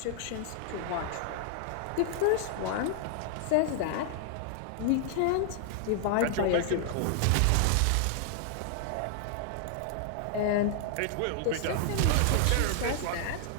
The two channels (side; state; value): both; different; correlation 0.00